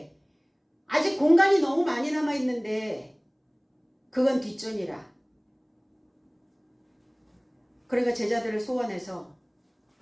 아직 공간이 너무 많이 남아있는데 그건 뒷전이라. 그러니까 제자들을 소환해서,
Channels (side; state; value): both; identical; correlation 1.00